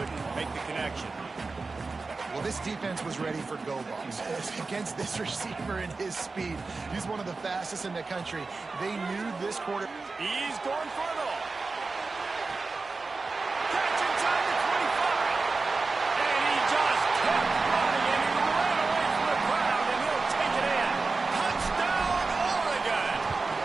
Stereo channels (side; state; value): left; quieter; 3.9 dB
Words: make the connection. Well, this defense was ready for go balls against this receiver and his speed. He's one of the fastest in the country. They knew this quarter. He's going for it all. Catch inside the 25. And he just kept running, and he ran away from the crowd, and he'll take it in. Touchdown, Oregon.